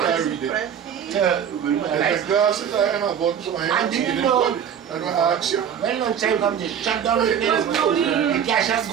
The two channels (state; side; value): quieter; left; 8.4 dB